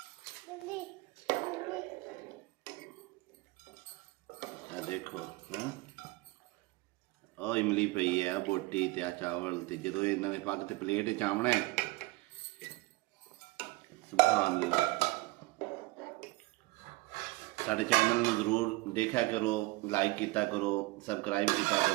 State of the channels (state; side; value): quieter; left; 21.7 dB